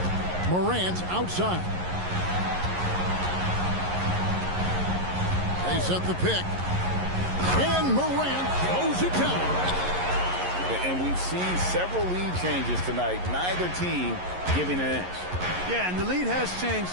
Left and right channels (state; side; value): late; left; 11 ms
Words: Morant outside. They set the pick. And Morant throws it down. And we've seen several lead changes tonight. Neither team giving an inch. Yeah, and the lead has changed